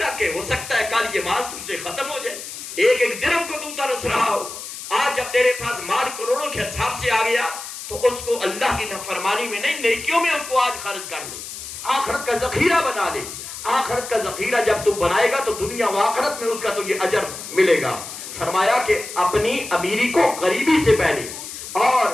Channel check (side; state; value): left; noise; hiss, 10 dB below the sound